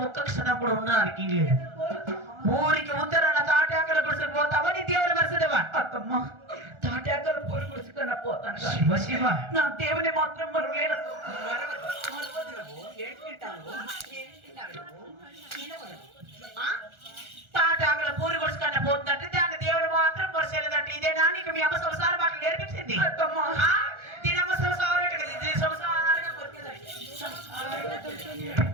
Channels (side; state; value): left; late; 1.4 ms